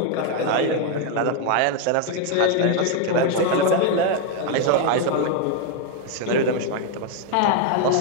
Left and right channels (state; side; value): different; both; correlation 0.01